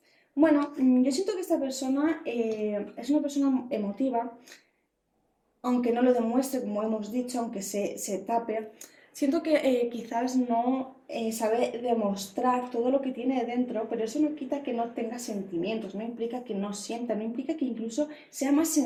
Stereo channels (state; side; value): identical; both; correlation 1.00